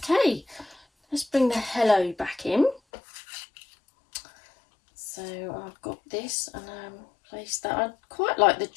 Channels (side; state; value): right; drops out; at 2.8 s